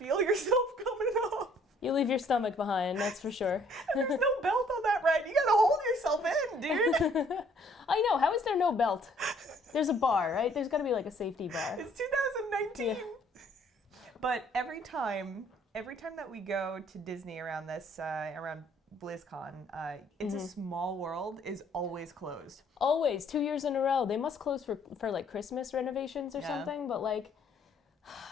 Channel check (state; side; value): normal; both; correlation 0.61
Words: yourself coming off. You leave your stomach behind, that's for sure. There's no belt on that ride. You gotta hold yourself in, dude. I know. How is there no belt? There's a bar, right? There's gotta be like a safety bar. It's 2019. Yeah. But every time that we go to Disney around around BlizzCon, It's a Small World is always closed. Always, 2 years in a row. They must close for like Christmas renovations or something, but like,